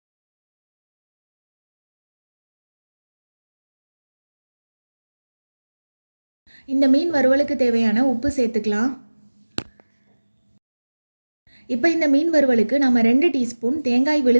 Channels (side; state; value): both; inverted; correlation -1.00